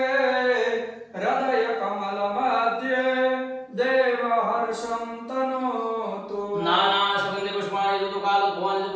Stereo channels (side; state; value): both; identical; correlation 1.00